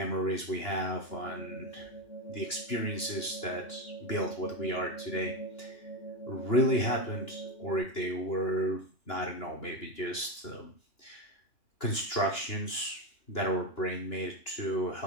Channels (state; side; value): late; right; 2.9 ms